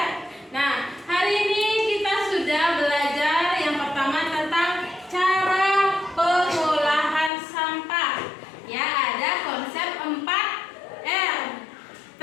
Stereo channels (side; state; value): right; drops out; at 7.3 s